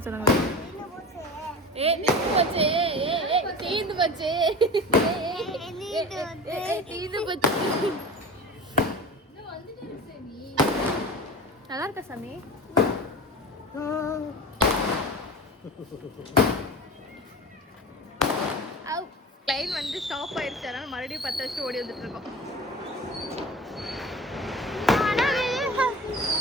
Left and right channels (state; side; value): normal; both; correlation 0.34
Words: சொன்னாங்க. தீந்து போச்சு. தீந்து போச்சு. தீந்து போச்சு. நல்லா இருக்கா சாமி? லைன் வந்து ஸ்டாப் ஆயிடுச்சு, அதனால மறுபடியும் 10 வருஷம் ஓடி வந்துட்டு இருக்கோம்.